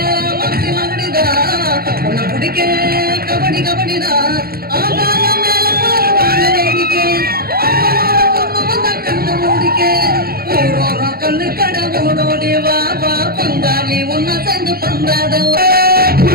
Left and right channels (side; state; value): left; late; 0.44 ms